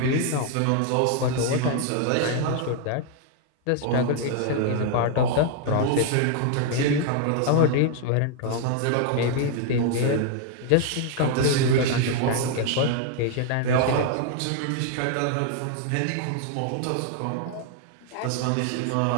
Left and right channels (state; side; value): different; both; correlation 0.00